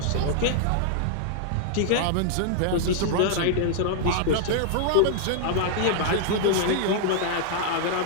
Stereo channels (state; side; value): different; both; correlation -0.01